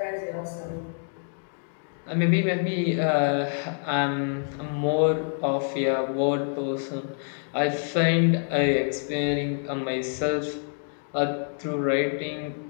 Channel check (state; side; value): silent; right; digital silence